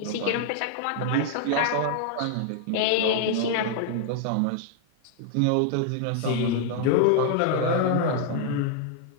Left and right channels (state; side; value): different; both; correlation 0.00